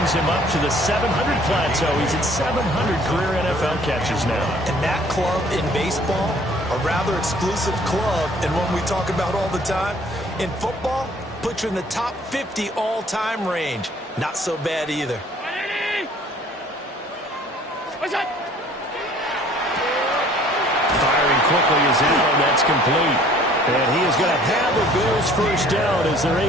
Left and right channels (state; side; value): normal; both; correlation 0.55